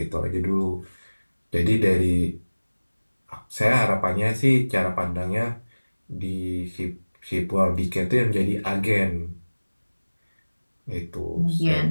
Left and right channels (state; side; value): inverted; both; correlation -1.00